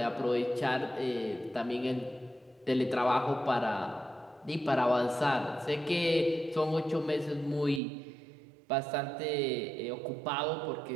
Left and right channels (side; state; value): left; drops out; at 7.8 s